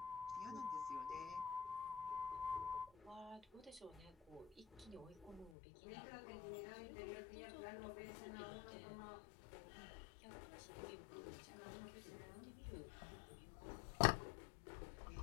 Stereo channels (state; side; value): drops out; right; at 5.5 s